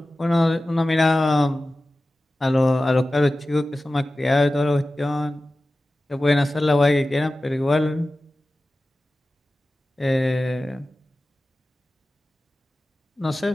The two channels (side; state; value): both; normal; correlation 0.95